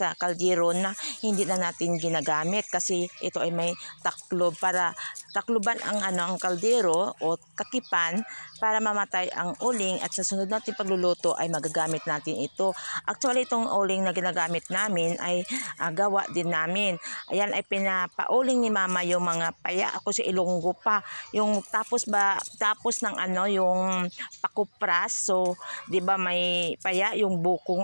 kaldero na hindi na natin ginagamit. Kasi ito ay may taklob para takluban ang kaldero o kakipan para mamatay ang uling at sa sunod natin pagluluto ay magagamit natin ito. Actually, itong uling na ginagamit namin ay gawa din namin. Ayan ay pinapauling ni Mama yung mga paya. Ako si Ilonggo pa. Yung tapos ng yung pakupras. So, 'di ba may paya yung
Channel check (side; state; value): both; inverted; correlation -1.00